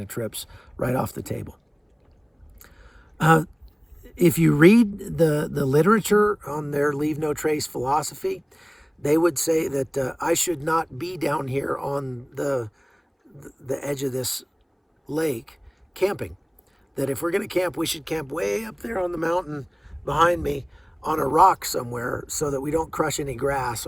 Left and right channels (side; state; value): both; identical; correlation 1.00